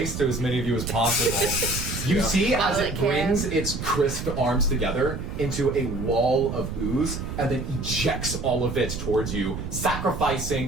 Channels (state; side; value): noise; right; rumble, 6 dB below the sound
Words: to as many of you as possible. You see as it brings its crisp arms together into a wall of ooze and then ejects all of it towards you,